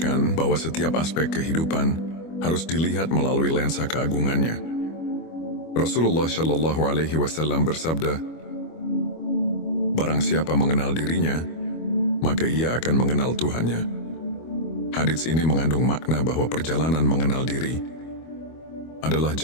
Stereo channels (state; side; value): late; right; 25 ms